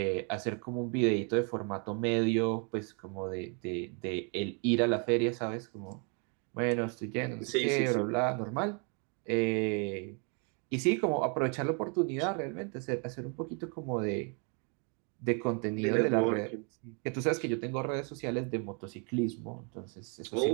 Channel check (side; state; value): left; quieter; 37.6 dB